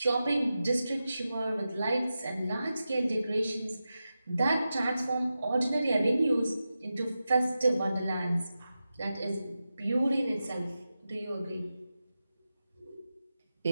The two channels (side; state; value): both; inverted; correlation -0.92